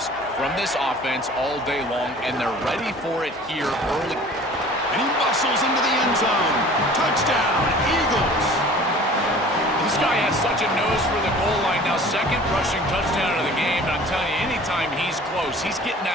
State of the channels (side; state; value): both; normal; correlation 0.46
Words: from this offense all day long, and they're ready for it here early. And he muscles into the end zone. Touchdown, Eagles. This guy has such a nose for the goal line now. 2nd rushing touchdown of the game. And I'm telling you, anytime he's close, he's getting